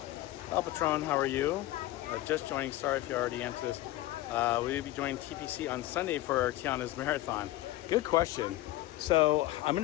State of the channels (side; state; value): right; quieter; 16.5 dB